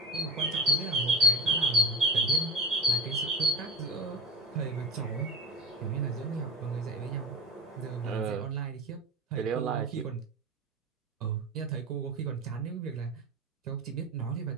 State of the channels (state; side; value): normal; both; correlation 0.31